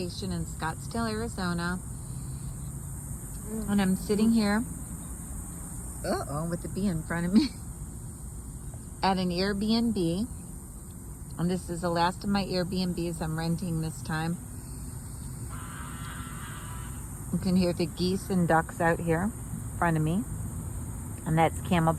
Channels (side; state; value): both; identical; correlation 1.00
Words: in Scottsdale, Arizona. And I'm sitting here, with the bee in front of me, at an Airbnb. And this is the last of my Airbnbs I'm renting this time. You can hear the geese and ducks out here in front of me. And that's